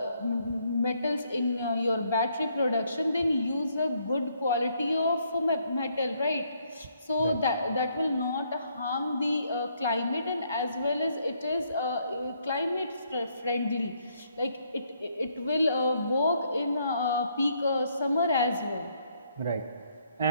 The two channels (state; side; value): inverted; both; correlation -0.71